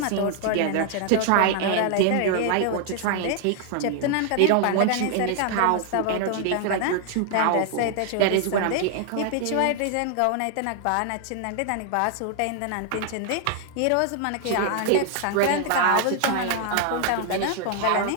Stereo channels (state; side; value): different; both; correlation 0.00